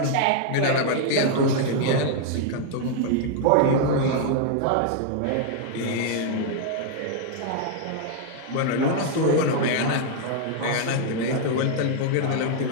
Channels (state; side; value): different; both; correlation 0.00